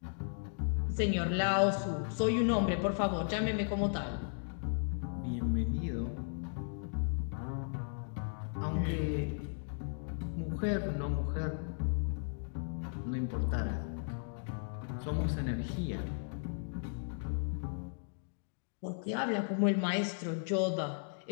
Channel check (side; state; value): right; silent; digital silence